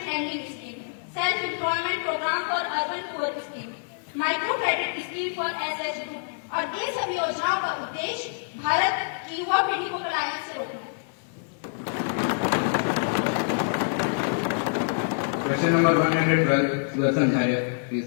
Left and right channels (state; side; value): silent; right; digital silence